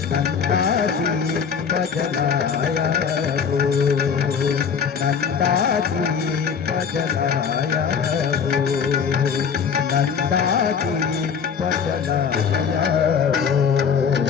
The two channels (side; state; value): right; quieter; 6.7 dB